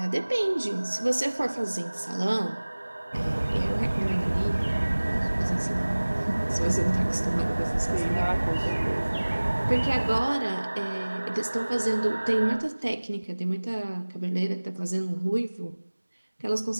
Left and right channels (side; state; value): both; inverted; correlation -1.00